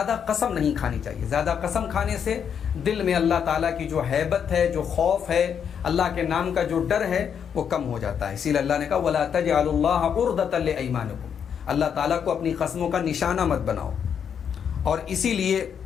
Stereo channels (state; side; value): quieter; right; 7.7 dB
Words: قسم نہیں کھانی چاہیے۔ زیادہ قسم کھانے سے دل میں اللہ تعالیٰ کی جو ہیبت ہے، جو خوف ہے، اللہ کے نام کا جو ڈر ہے وہ کم ہو جاتا ہے۔ اسی لیے اللہ نے کہا وَلَا تَجْعَلُوا اللَّهَ عُرْضَةً لِأَيْمَانِكُمْ، اللہ تعالیٰ کو اپنی قسموں کا نشانہ مت بناؤ۔ اور اسی لیے